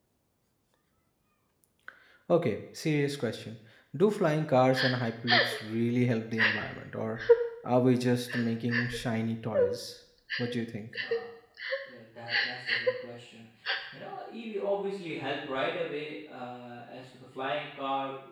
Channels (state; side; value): identical; both; correlation 1.00